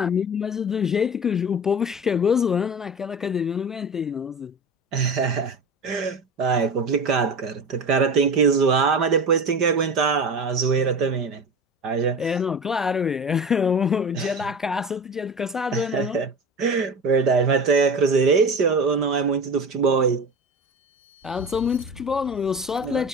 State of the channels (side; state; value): both; normal; correlation 0.31